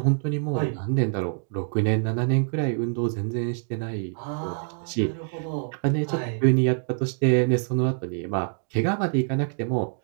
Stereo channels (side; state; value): left; silent; digital silence